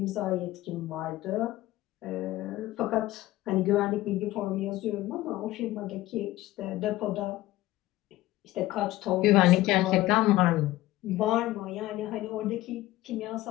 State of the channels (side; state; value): right; quieter; 16.7 dB